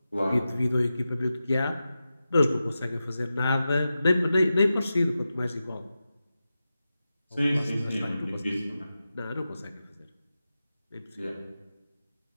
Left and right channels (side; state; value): both; inverted; correlation -0.92